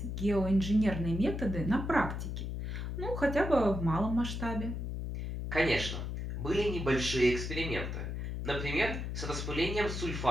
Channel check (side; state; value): left; noise; hum, 4 dB below the sound